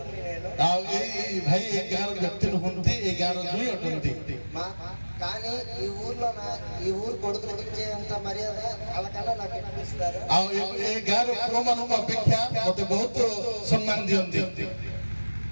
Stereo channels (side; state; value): both; inverted; correlation -1.00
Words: నేను ଆଉ ଏଇ ଭାଇ ଏ ଗାଁର ବ୍ୟକ୍ତି ନୁହନ୍ତି ଏ ଗାଁର ଦୁଇ ଅଟନ୍ତି కానీ ఈ ఊరు కొడుకులకు ఇచ్చేంత మర్యాద వాళ్ళకన్నా నాకు అనిపిస్తారు। ଆଉ ଏ ଗାଁର ପୁଅମାନଙ୍କ ଅପେକ୍ଷା ମୋତେ ବହୁତ ସମ୍ମାନ ଦିଅନ୍ତି।